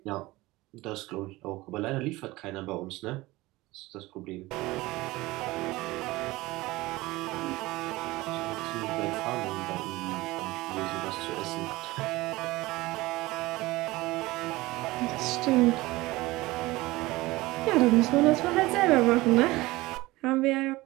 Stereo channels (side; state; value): left; quieter; 19.9 dB